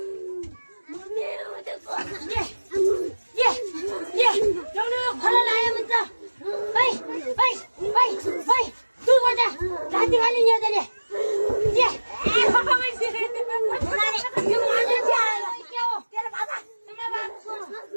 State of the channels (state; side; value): inverted; both; correlation -1.00